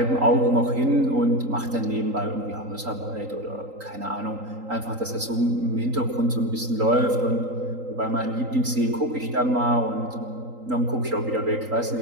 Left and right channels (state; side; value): late; left; 3.8 ms